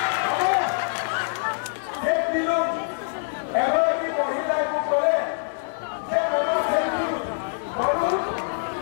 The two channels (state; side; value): silent; right; digital silence